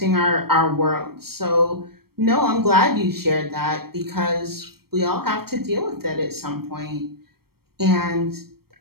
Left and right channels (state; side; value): late; left; 0.94 ms